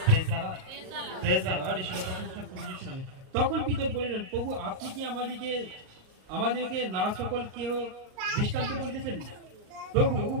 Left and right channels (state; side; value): late; left; 38 ms